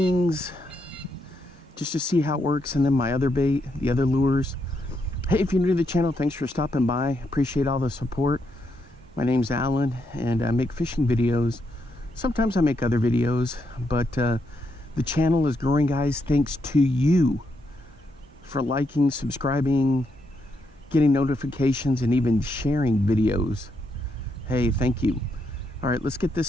just to see how it works, and then my other bait, the other lures. Hey, if you're new to the channel, thanks for stopping by. Appreciate all the support. My name's Alan, and I make fishing videos. Sometimes I make other videos, but the channel is growing, guys, thanks to you for liking, subscribing, getting notifications, and even sharing videos. Hey, thank you. All right, let's get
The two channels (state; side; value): normal; both; correlation 0.79